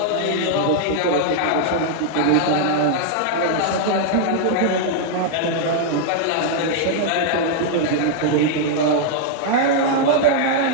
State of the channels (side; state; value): both; different; correlation -0.01